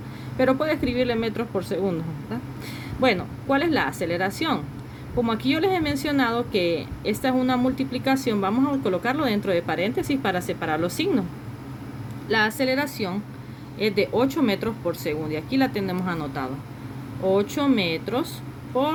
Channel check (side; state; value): both; identical; correlation 1.00